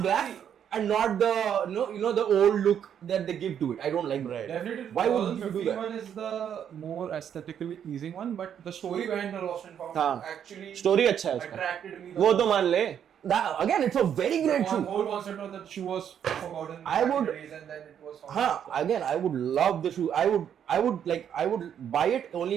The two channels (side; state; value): left; quieter; 8.9 dB